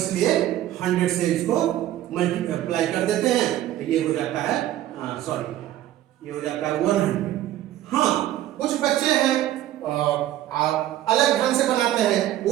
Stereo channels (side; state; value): left; quieter; 13.4 dB